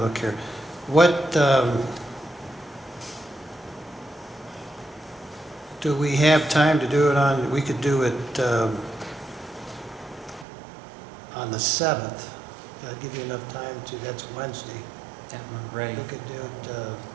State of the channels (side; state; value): left; drops out; at 10.5 s